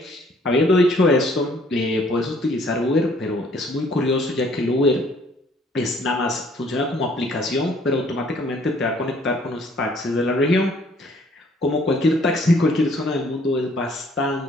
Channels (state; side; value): normal; both; correlation 0.60